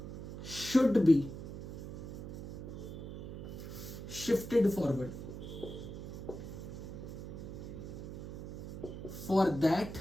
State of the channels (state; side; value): noise; right; hum, 8 dB below the sound